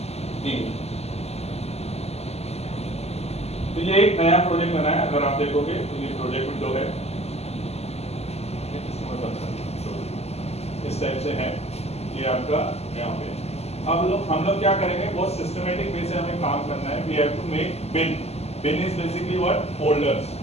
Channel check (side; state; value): right; late; 0.30 ms